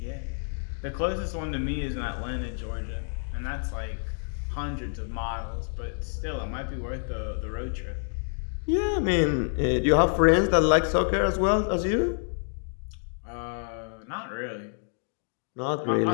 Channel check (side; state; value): right; silent; digital silence